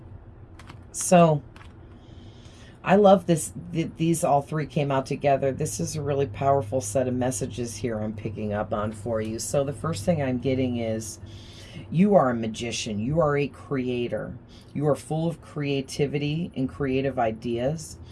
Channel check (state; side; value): identical; both; correlation 1.00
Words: So I love this. These all three came out together. This is a really powerful set of messages here I'm picking up on for you. So the first thing I'm getting is you are a magician. You are a creator. You are full of creativity and creative ideas.